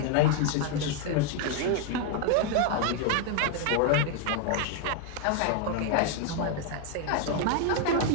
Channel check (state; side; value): different; both; correlation 0.00